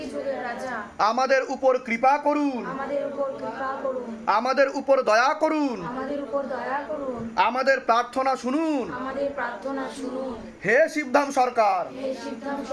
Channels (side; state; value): both; identical; correlation 1.00